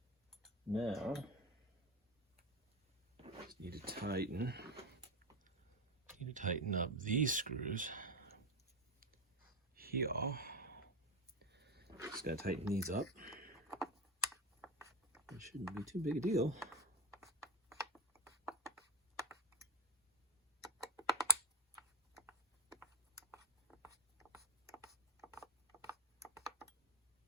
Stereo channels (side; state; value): both; normal; correlation 0.10